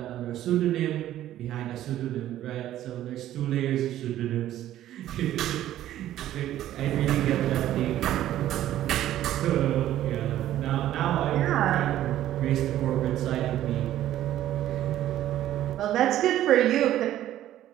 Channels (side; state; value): left; quieter; 12.9 dB